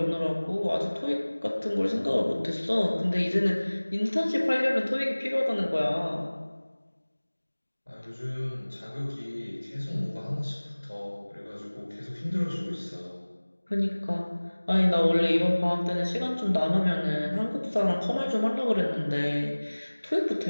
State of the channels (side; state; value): both; inverted; correlation -1.00